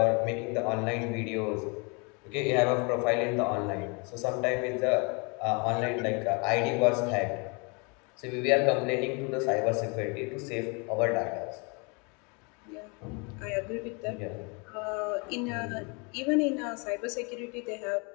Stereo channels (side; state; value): right; quieter; 32.3 dB